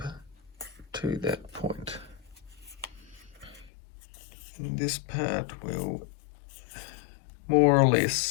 to that point. And this part will more or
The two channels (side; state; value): right; drops out; at 3.7 s